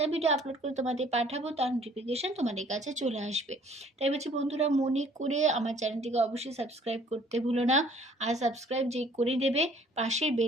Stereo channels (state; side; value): normal; both; correlation 0.57